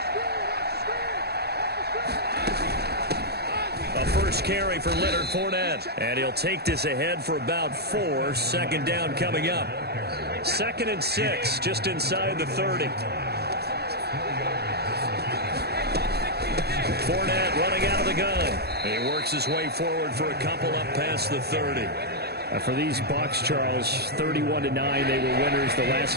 Carry for Leonard Fournette, and he'll take this ahead for about 4. Second down coming up. 2nd and 6, just inside the 30. Fournette running out of the gun. He works his way forward for a couple up past the 30. For these Bucs, Charles, 31-9, they were winners the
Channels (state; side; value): late; left; 0.47 ms